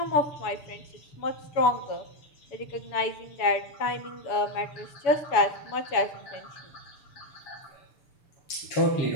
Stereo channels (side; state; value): right; late; 6.8 ms